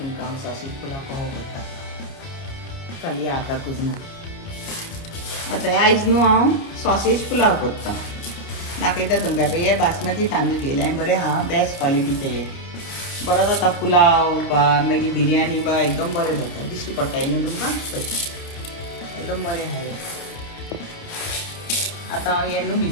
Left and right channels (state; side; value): late; right; 29 ms